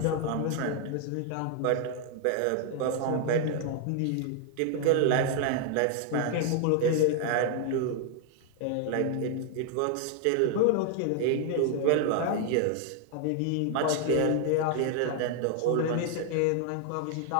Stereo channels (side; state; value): both; different; correlation 0.00